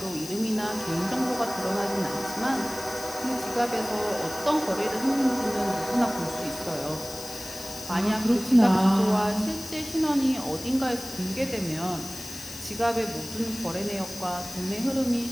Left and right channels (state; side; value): noise; left; hiss, 12 dB below the sound